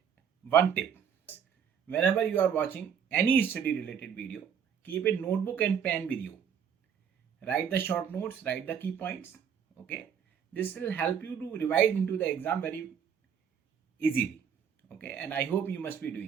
one tip: whenever you are watching any study related video, keep a notebook and pen with you. Write the short notes, write the key points. Okay, this will help you to revise into the exam very easily. Okay, and I hope you must be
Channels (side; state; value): left; quieter; 7.7 dB